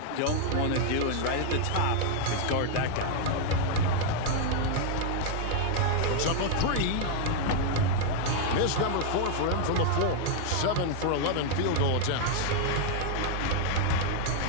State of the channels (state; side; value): different; both; correlation 0.00